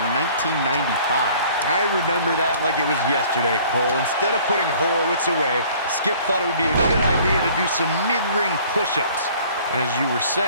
1995. I remember that like it was yesterday, Cole. Instead of putting Horowitz away, Skip thought it would be a good idea to do some mid-ring push-ups. And as you were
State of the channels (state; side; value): inverted; both; correlation -0.53